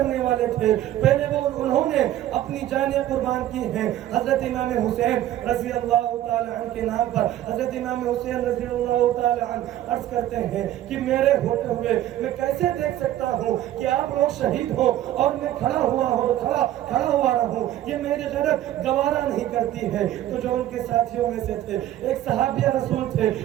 والے تھے، پہلے وہ انہوں نے اپنی جانیں قربان کی ہیں حضرت امام حسین رضی اللہ تعالی عنہ کے نام پر۔ حضرت امام حسین رضی اللہ تعالی عنہ عرض کرتے ہیں کہ میرے ہوتے ہوئے میں کیسے دیکھ سکتا ہوں کہ آپ لوگ شہید ہو اور میں کھڑا ہوا رہوں، یہ میری غیرت گوارا نہیں کرتی ہے۔ تو جو ان کے ساتھیوں میں سے تھے، ایک صحابی رسول تھے،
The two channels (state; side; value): quieter; left; 13.1 dB